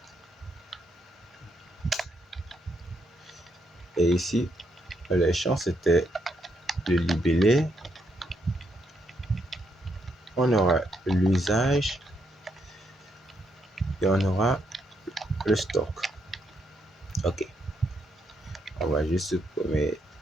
Et ici, les champs, c'était le libellé. On aura l'usage et on aura le stock. Ok. On va juste supprimer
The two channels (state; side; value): normal; both; correlation 0.77